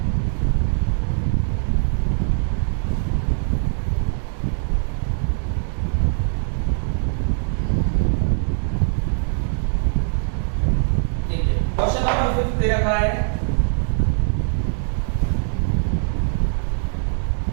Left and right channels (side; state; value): left; silent; 64 dB below the other